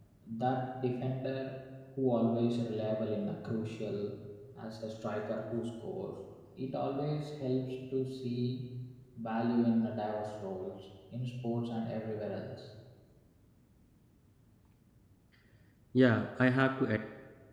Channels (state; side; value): identical; both; correlation 1.00